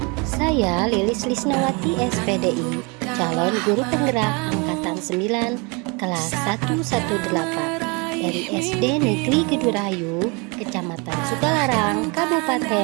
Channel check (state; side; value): quieter; left; 30.1 dB